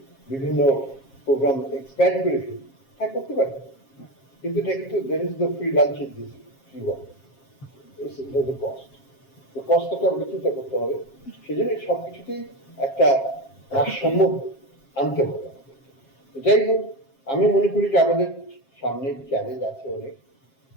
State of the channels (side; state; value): right; late; 7.4 ms